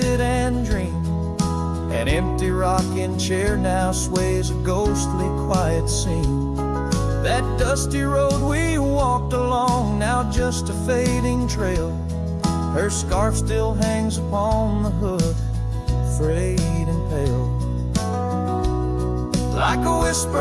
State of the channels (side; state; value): both; identical; correlation 1.00